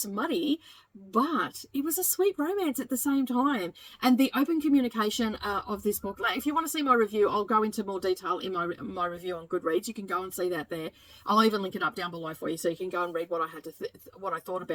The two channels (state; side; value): identical; both; correlation 1.00